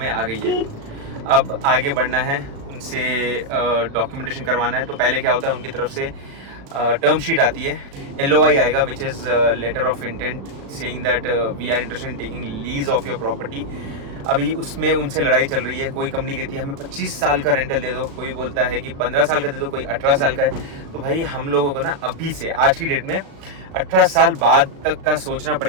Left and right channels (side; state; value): left; late; 36 ms